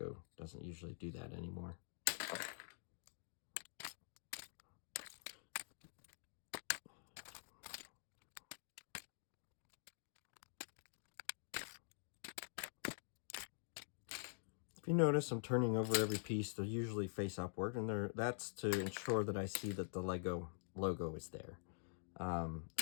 doesn't usually do that anymore. If you notice, I'm turning over every piece. They're usually face upward, and that's to ensure that I see that the Lego logo is there.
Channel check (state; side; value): silent; right; digital silence